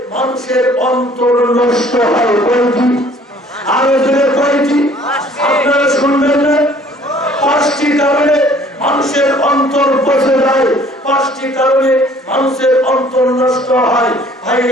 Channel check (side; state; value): both; normal; correlation 0.55